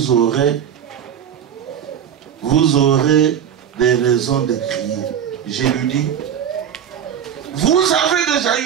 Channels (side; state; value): left; quieter; 8.8 dB